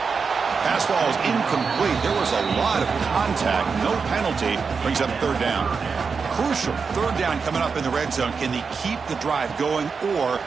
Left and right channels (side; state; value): left; quieter; 5.3 dB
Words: Pass ball is incomplete. There was a lot of contact. No penalty. Brings up 3rd down. Crucial 3rd down coming up in the red zone. Can they keep the drive going, or